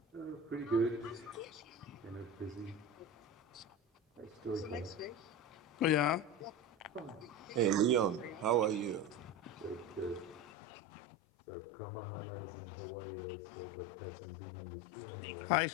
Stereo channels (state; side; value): drops out; right; at 10.5 s